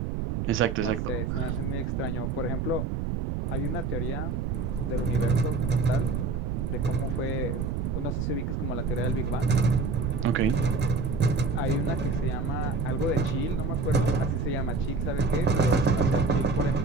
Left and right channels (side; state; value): right; noise; rumble, 1 dB below the sound